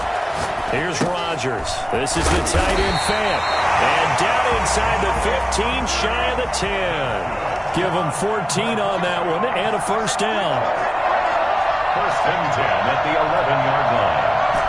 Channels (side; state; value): both; identical; correlation 1.00